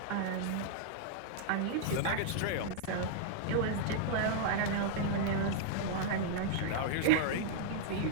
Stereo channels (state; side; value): different; both; correlation -0.01